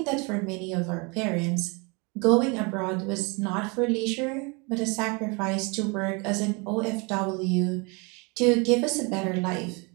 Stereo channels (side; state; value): left; quieter; 30.2 dB